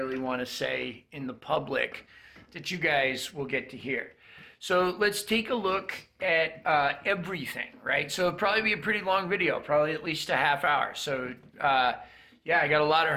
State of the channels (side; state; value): both; identical; correlation 1.00